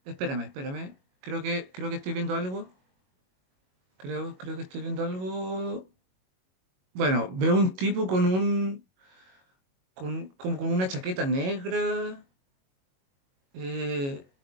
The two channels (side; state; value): left; late; 22 ms